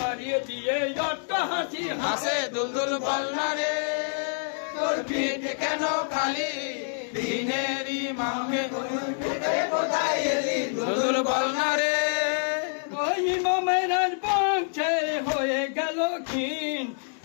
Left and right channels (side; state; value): right; silent; digital silence